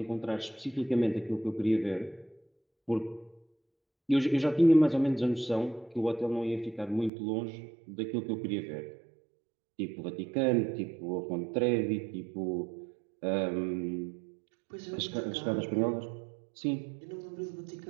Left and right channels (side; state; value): left; drops out; at 7.1 s